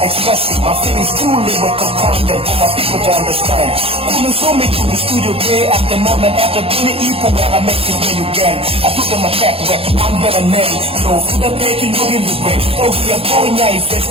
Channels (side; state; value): left; late; 0.27 ms